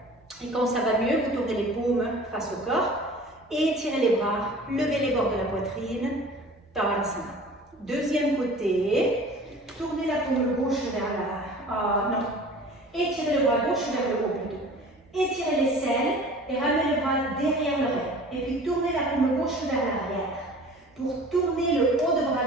Et quand ça va mieux, vous tournez les paumes face au corps. Étirez les bras, levez les bords de la poitrine. Tadasana. Deuxième côté. Tournez la paume gauche vers la... non. Étirez le bras gauche vers le haut plutôt. Étirez l'aisselle et ramenez le bras derrière l'oreille. Et puis tournez la paume gauche vers l'arrière. Pour tourner le haut de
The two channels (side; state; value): both; normal; correlation 0.44